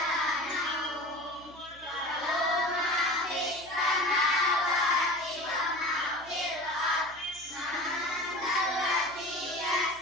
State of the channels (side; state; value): right; noise; hum, 23 dB below the sound